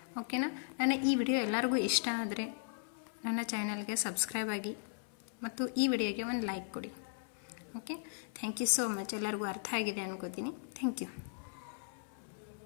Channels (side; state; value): right; silent; 53 dB below the other